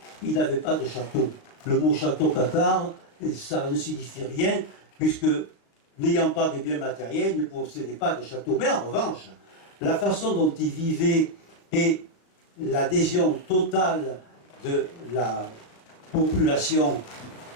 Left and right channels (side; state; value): right; late; 36 ms